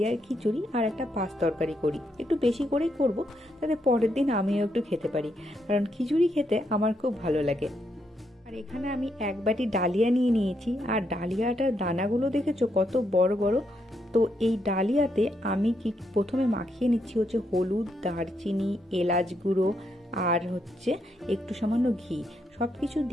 খিচুড়ি আর একটা পাঁচ তরকারি করি, একটু বেশি করেই করব, তাতে পরের দিন আমিও একটু খেতে পারি, কারণ খিচুড়ি খেতে আমার খুব ভালো লাগে। আর এখানে আমি এক বাটি ডালিয়া নিয়ে নিয়েছি, আর ডালিয়াটার দানাগুলো দেখেছো কত বড় বড়। তো এই ডালিয়াতে আমি কি প্রথমে মাখিয়ে নিচ্ছি হচ্ছে হলুদ, দারচিনি, এলাচ গুঁড়ো আর হচ্ছে একটু সামান্য ঘি, সব কিছু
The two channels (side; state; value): both; normal; correlation 0.78